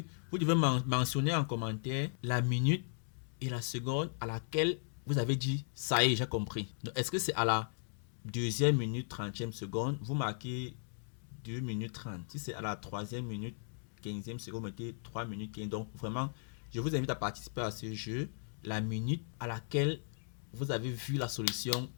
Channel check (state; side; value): silent; right; digital silence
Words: vous devez mentionner en commentaire la minute et la seconde à laquelle vous avez dit ça y est, j'ai compris. Est-ce que c'est à la deuxième minute 30e seconde, vous marquez 2 minutes 30. Si c'est à la troisième minute 15e seconde, vous mettez 3 minutes 15. Donc vraiment, je vous invite à participer à ce jeu. La minute à laquelle vous avez vu la solution